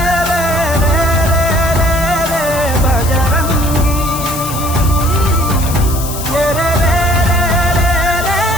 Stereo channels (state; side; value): noise; left; hiss, 9 dB below the sound